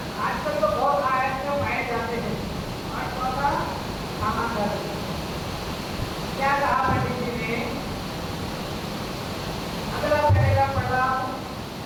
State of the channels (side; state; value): both; identical; correlation 1.00